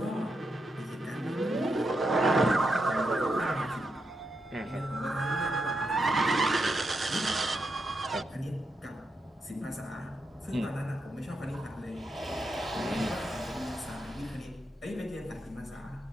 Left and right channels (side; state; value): both; normal; correlation 0.84